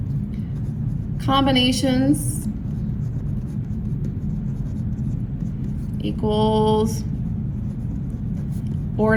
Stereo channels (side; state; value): both; identical; correlation 1.00